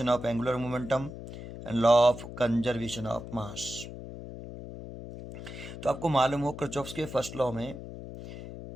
of angular momentum and law of conservation of mass. तो आपको मालूम हो Kirchhoff's के first law में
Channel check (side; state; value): left; noise; hum, 11 dB below the sound